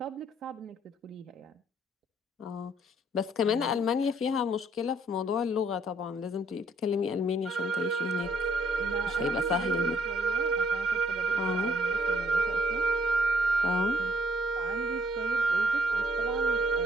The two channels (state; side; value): normal; both; correlation 0.65